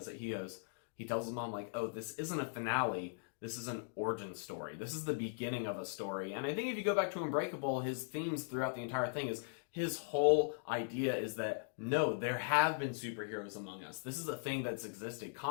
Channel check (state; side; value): silent; right; digital silence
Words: it. He tells his mom, like, oh, this isn't a finale. This is an origin story. This is the beginning of a story. And I think if you go back to Unbreakable, his themes throughout the entire thing is his whole idea is that, no, there have been superheroes among us. This is a thing that's existed.